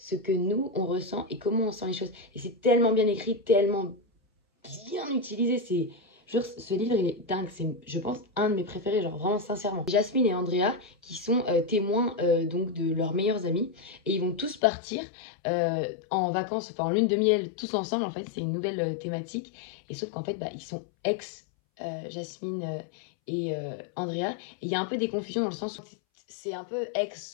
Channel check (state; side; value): drops out; right; at 14.6 s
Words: que nous, on ressent et comment on sent les choses. Et c'est tellement bien écrit, tellement bien utilisé. C'est... Ce livre, il est dingue. C'est, je pense, un de mes préférés, genre vraiment sincèrement. Jasmine et Andrea, qui sont témoins donc de leurs meilleurs amis. Et ils vont tous partir en vacances, enfin en lune de miel, tous ensemble. En fait, c'est une nouvelle thématique. Et sauf qu'en fait, ils sont ex Jasmine et Andrea. Et il y a un peu des confusions dans le sens où c'est un peu